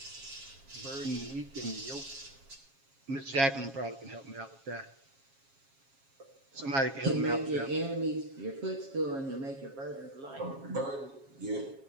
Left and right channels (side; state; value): left; late; 7.4 ms